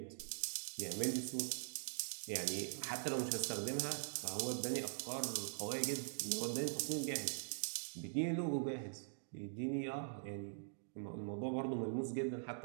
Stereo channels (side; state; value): left; silent; digital silence